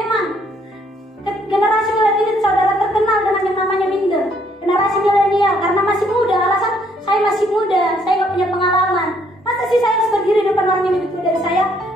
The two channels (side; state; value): both; normal; correlation 0.67